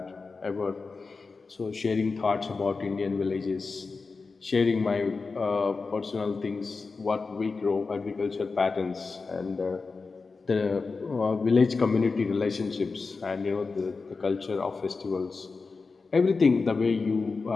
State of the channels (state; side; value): quieter; right; 4.3 dB